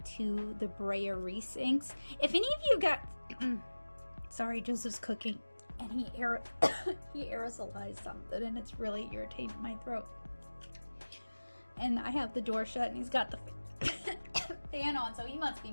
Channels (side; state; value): both; inverted; correlation -1.00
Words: to the Brea Reese inks. If any of you got, sorry, Joseph's cooking, and he aerosolized something, and it's really irritating my throat. And I have the door shut, and he's got the fan on, so he must